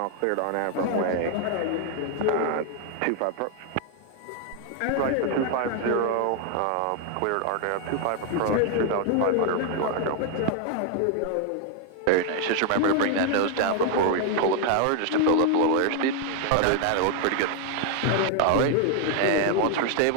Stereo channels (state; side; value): different; both; correlation 0.00